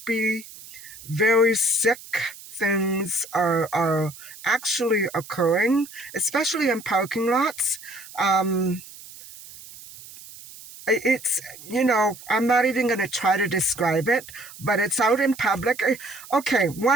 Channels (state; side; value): noise; right; hiss, 17 dB below the sound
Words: very sick things are actually occurring, especially in parking lots. Um, it's, I'm not even going to try to describe it, but it's out in public. Okay,